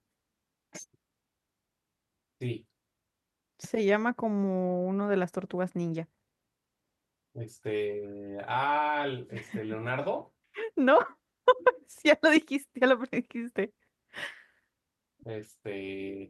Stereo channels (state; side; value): identical; both; correlation 1.00